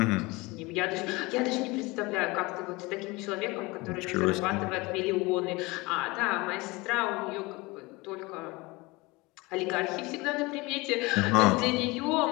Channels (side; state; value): right; quieter; 23.6 dB